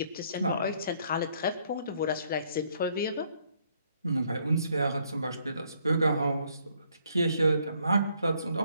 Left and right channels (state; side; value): inverted; both; correlation -0.68